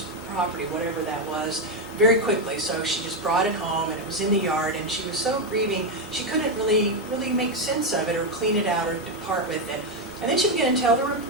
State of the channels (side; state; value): both; normal; correlation 0.05